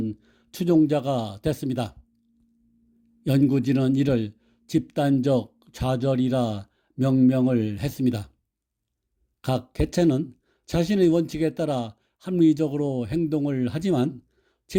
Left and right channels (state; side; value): identical; both; correlation 1.00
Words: 추종자가 됐습니다. 연구진은 이를 집단적 좌절이라 명명을 했습니다. 각 개체는 자신의 원칙에 따라 합리적으로 행동을 하지만